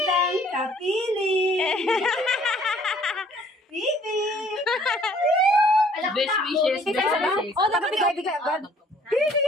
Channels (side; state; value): both; normal; correlation 0.59